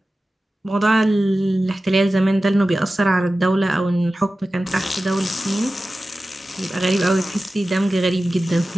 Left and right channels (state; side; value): normal; both; correlation 0.95